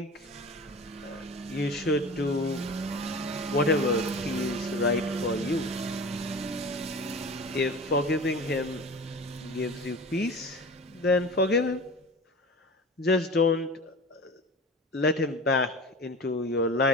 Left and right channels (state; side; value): normal; both; correlation 0.35